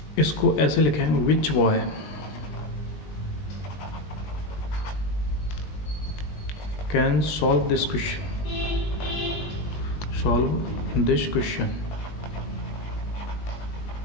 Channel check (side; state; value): right; late; 20 ms